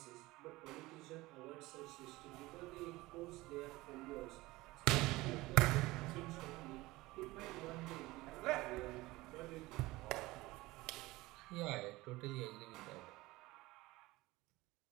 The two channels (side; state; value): left; quieter; 19.9 dB